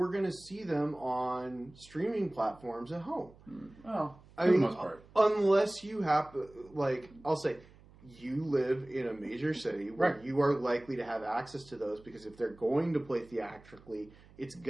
going to see them on streaming platforms at home. Well, I for mean, the most part. Unless you have, like, I'll say, you live in a major city where Right. you are likely to have access to those, because if they're going to play theatrically, it's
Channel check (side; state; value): right; noise; hum, 24 dB below the sound